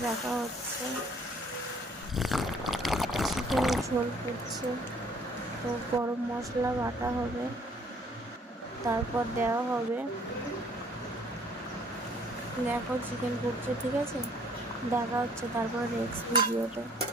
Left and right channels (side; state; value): both; normal; correlation 0.59